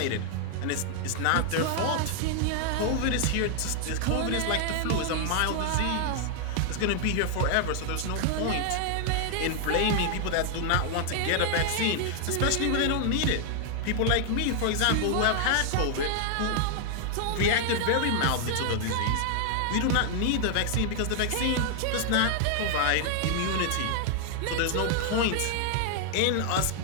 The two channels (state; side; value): different; both; correlation 0.00